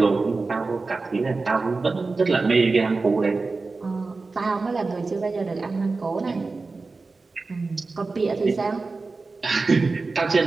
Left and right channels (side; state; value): left; quieter; 3.9 dB